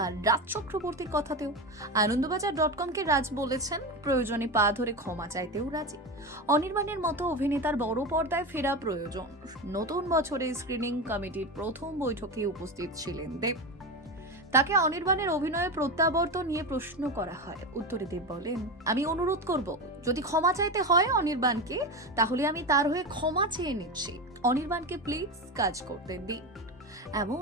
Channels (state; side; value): normal; both; correlation 0.20